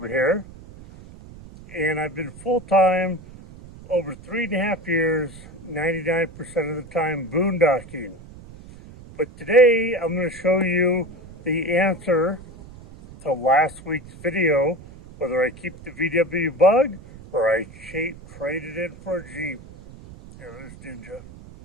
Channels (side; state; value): right; noise; rumble, 18 dB below the sound